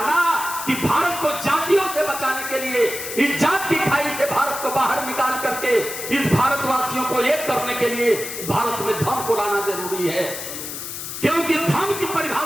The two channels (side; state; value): left; noise; hiss, 7 dB below the sound